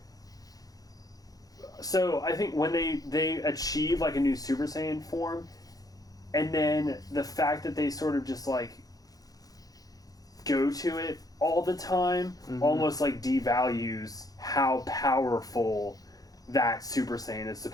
so I think when they achieve like a new Super Saiyan form, and then the fact that they sort of just like go to it all the time almost like devalues how powerful that Super Saiyan is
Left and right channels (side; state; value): right; late; 0.18 ms